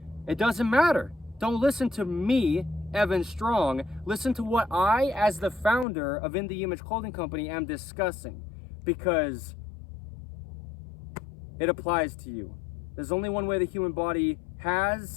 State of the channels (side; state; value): right; drops out; at 5.9 s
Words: it doesn't matter. Don't listen to me, Evan Strong. Listen to what I, as the founder of In The Image Clothing Company, am discussing, because it applies to you. There's only one way the human body